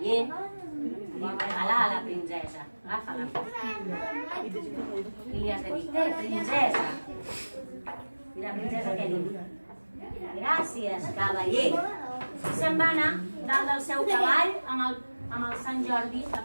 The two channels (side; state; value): both; inverted; correlation -1.00